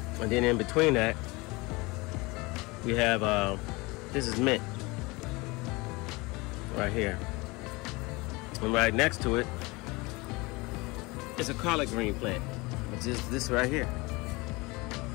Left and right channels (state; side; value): quieter; right; 24.2 dB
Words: And then in between that, we have, this is mint. Right here. And right next to it is a collard green plant, which is this right here.